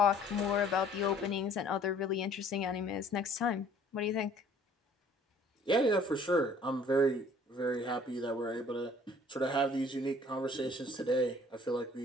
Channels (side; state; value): both; normal; correlation 0.55